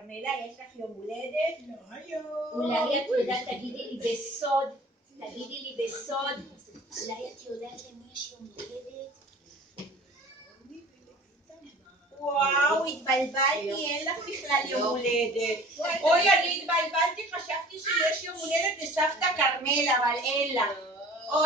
יש לך יום הולדת? לא היום. אולי את יודעת, תגידי לי בסוד. אולי את יודעת למי יש יום הולדת? וואו, התבלבלתי, אין לך בכלל יום הולדת. אוי, אני התבלבלתי, חשבתי שיש יום הולדת לסבתא כרמלה, אבל אין לה.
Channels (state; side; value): normal; both; correlation 0.46